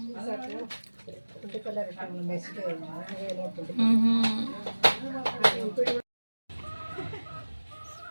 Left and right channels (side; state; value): both; inverted; correlation -1.00